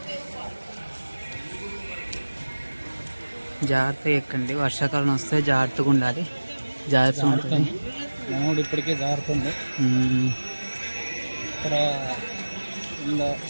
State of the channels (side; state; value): both; inverted; correlation -1.00